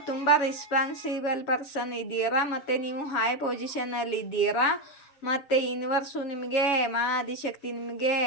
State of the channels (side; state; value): right; late; 7.1 ms